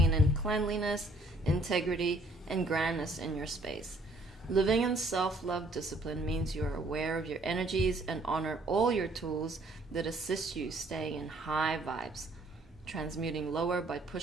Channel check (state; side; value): normal; both; correlation 0.63